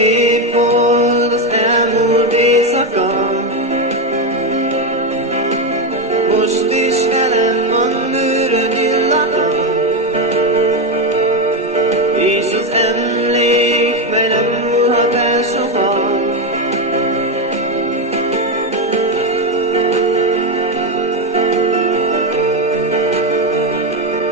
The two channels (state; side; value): normal; both; correlation 0.10